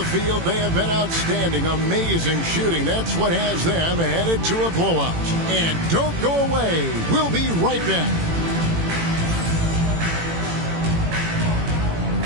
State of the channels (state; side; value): late; left; 18 ms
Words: field, they have been outstanding, amazing shooting. That's what has them headed to a blowout. And don't go away. We'll be right back.